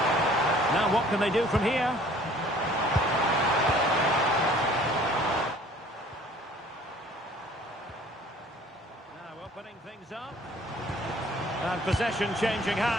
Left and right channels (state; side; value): normal; both; correlation 0.53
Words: Now what can they do from here? Now opening things up. And possession changing